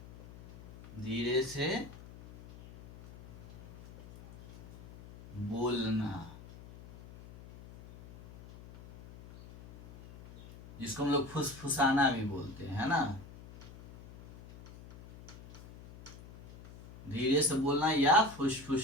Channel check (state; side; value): noise; left; hum, 18 dB below the sound